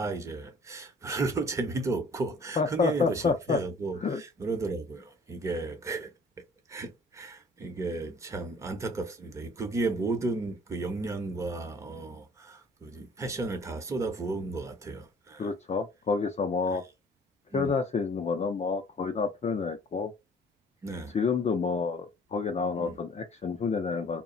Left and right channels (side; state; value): both; normal; correlation 0.54